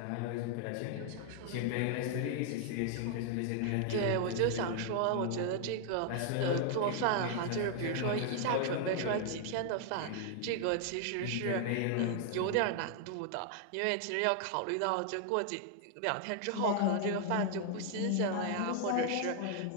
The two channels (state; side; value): different; both; correlation 0.00